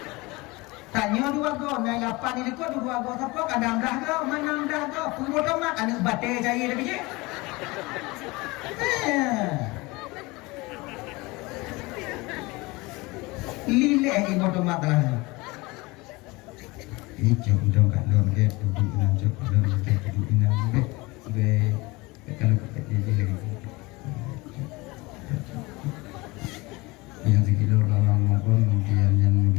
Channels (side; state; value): right; quieter; 23.3 dB